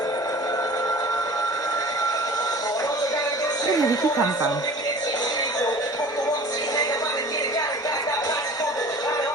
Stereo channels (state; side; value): normal; both; correlation 0.43